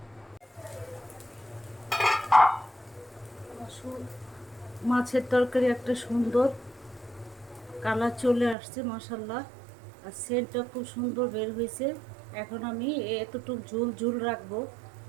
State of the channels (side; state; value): left; drops out; at 8.6 s